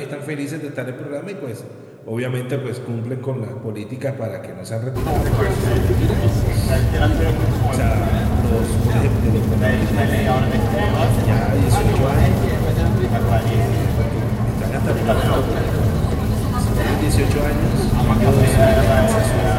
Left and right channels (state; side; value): identical; both; correlation 1.00